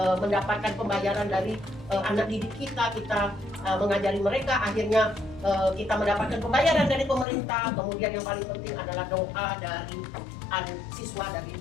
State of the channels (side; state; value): right; drops out; at 7.2 s